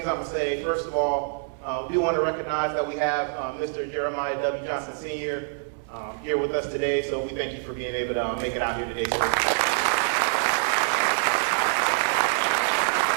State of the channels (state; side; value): silent; left; 61 dB below the other